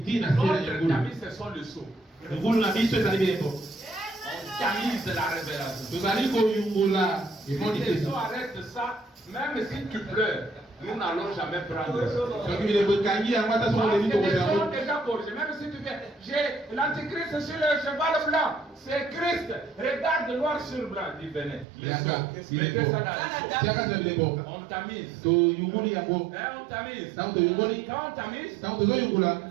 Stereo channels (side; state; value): left; drops out; at 21.7 s